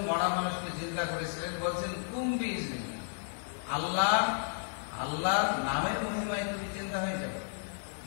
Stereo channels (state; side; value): silent; right; digital silence